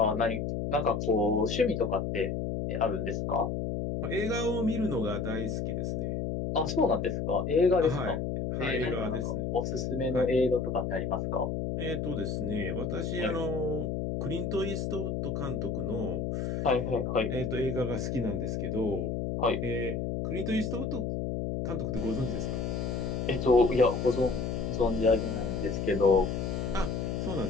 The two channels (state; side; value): noise; left; hum, 1 dB below the sound